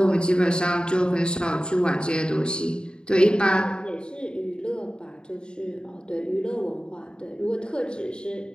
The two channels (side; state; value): right; late; 0.050 ms